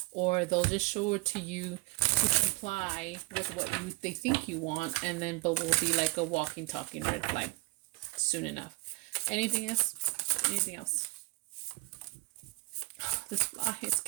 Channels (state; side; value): quieter; left; 23.8 dB